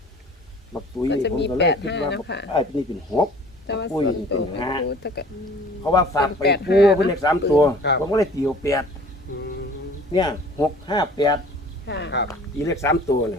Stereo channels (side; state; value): both; normal; correlation 0.49